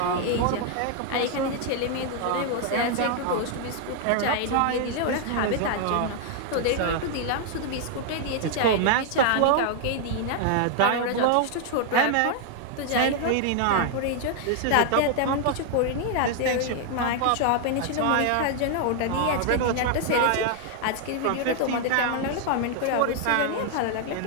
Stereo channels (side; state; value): both; different; correlation 0.00